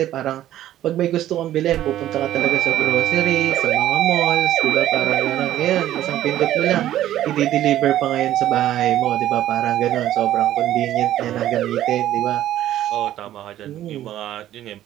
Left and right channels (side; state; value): left; quieter; 12.8 dB